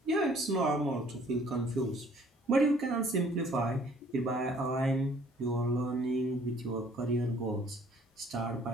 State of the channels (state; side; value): normal; both; correlation 0.58